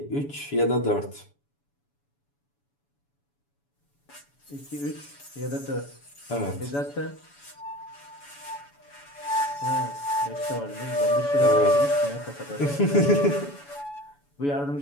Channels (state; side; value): late; right; 7.0 ms